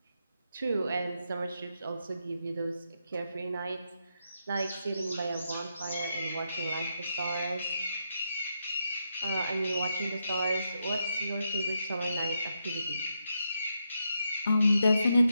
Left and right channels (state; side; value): inverted; both; correlation -0.83